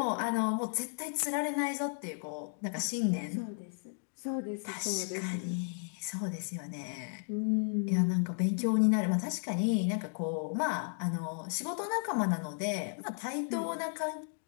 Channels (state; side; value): silent; right; 55 dB below the other